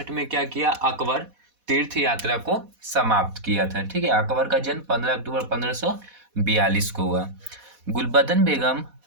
में क्या किया? अकबर तीर्थ यात्रा को समाप्त किया था। ठीक है, अकबर का जन्म 15 अक्टूबर 1542 को हुआ। गुलबदन बेगम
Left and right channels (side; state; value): left; late; 4.1 ms